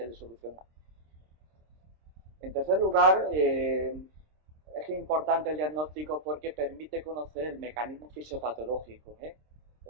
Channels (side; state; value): left; late; 26 ms